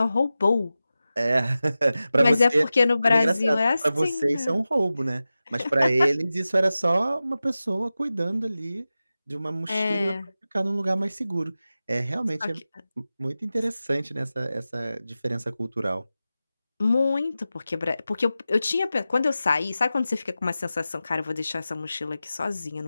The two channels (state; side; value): inverted; both; correlation -0.94